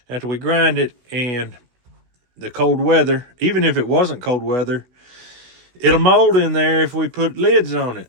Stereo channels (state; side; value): late; left; 16 ms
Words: after we grind it, and the cold weather, even if it wasn't cold weather, it'll mold in there if we put lids on it.